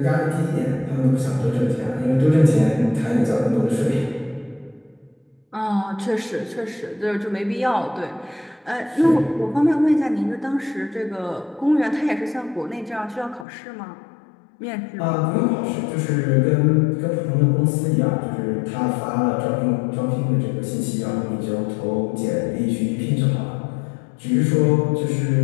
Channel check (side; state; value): right; drops out; at 13.5 s